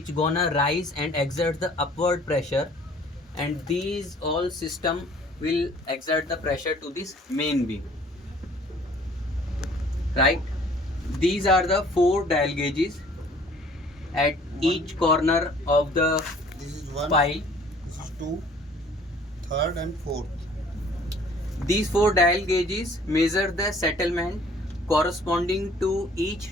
gonna rise and exert the upward pressure, and these all system will exert the pressure to this main beam, right? These are the 4 dial gauges at each corner of the This is one, pile. this is two, third and fourth. These 4 dial gauges measure the settlement corresponding to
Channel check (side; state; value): both; normal; correlation 0.54